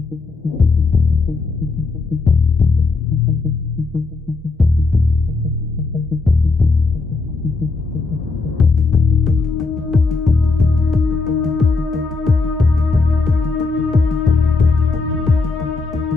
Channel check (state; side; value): quieter; right; 4.0 dB